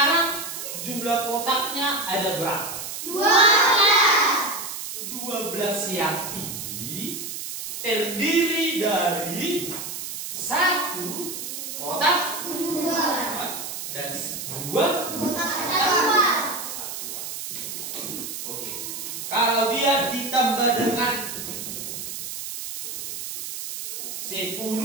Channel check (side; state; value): right; noise; hiss, 7 dB below the sound